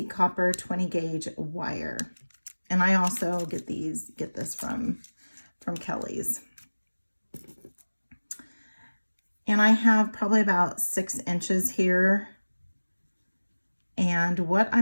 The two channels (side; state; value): both; inverted; correlation -1.00